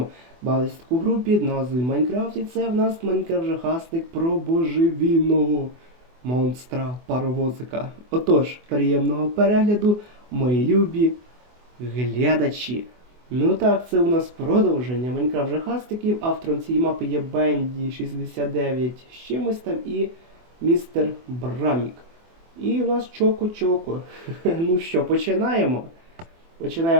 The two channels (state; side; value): late; left; 24 ms